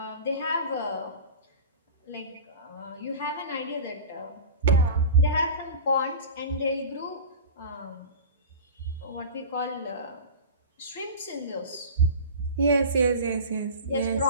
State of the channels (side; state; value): both; inverted; correlation -0.33